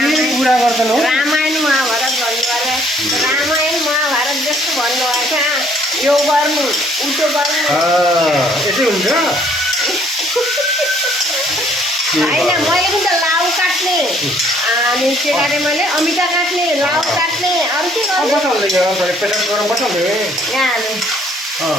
कुरा गर्दैन हो रामायण महाभारत भन्नुभयो रामायण महाभारत जस्तो भन्नुभएको यो गर्नु उल्टो गर्नु यसै हुन्छ होइन मैले पनि त लाउ काट्ने अनि के काटेँ मैले अमिता काट्ने लाउ काट्ने अरू के यहाँ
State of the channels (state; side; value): normal; both; correlation 0.63